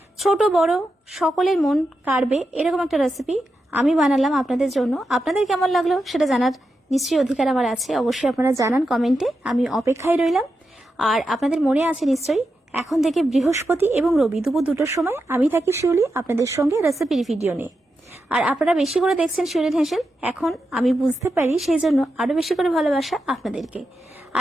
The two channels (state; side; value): normal; both; correlation 0.88